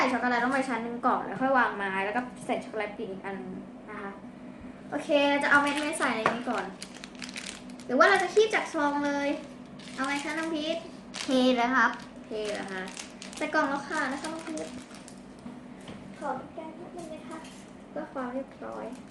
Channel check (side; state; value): both; identical; correlation 1.00